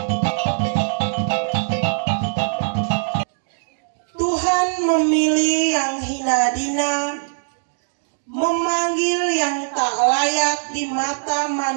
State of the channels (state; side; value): silent; left; digital silence